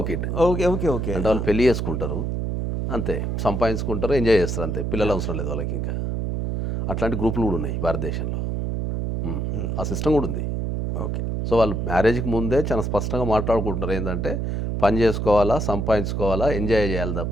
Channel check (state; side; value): noise; right; hum, 1 dB below the sound